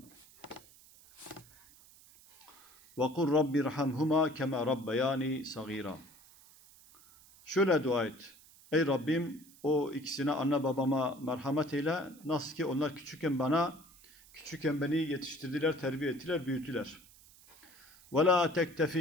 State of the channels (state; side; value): noise; right; hiss, 24 dB below the sound